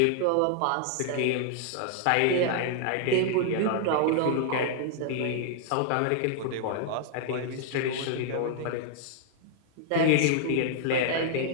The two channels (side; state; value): both; different; correlation -0.01